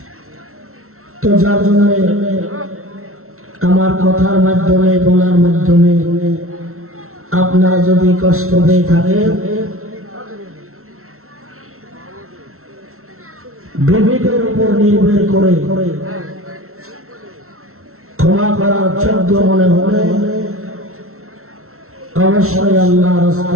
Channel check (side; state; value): left; late; 0.63 ms